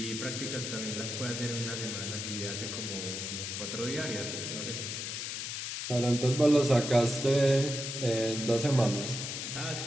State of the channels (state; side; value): noise; left; hiss, 4 dB below the sound